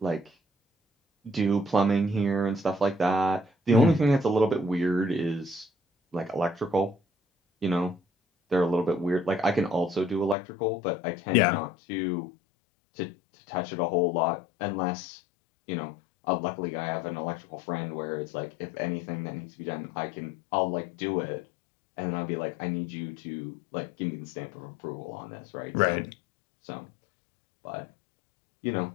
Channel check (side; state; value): right; drops out; at 10.4 s